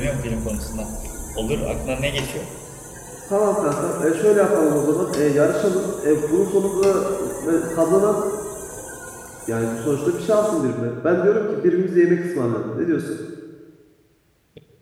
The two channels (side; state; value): both; identical; correlation 1.00